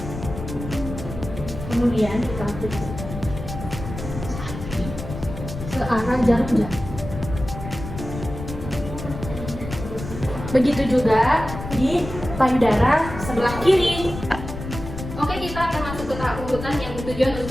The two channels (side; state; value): left; noise; rumble, 9 dB below the sound